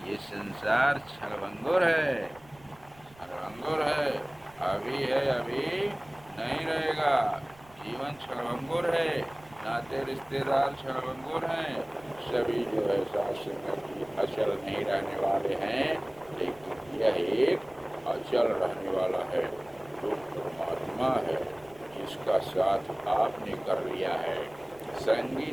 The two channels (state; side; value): noise; right; rumble, 26 dB below the sound